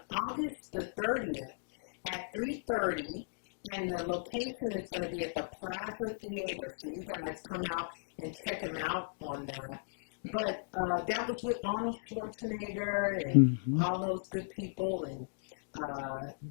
August the 30th at 3:30, and the location is going to be at the Plaza Theater. So you guys come out and check him out on that. But that was with Arnold Schwarzenegger and all those good people, and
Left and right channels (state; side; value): silent; right; digital silence